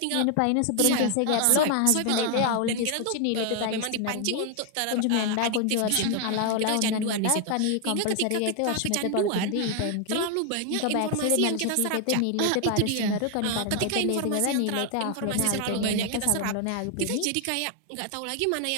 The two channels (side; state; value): both; different; correlation 0.00